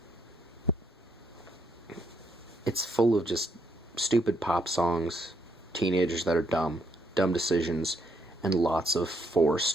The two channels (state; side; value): normal; both; correlation 0.73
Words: It's full of just stupid pop songs, teenagers that are dumb decisions, and lots of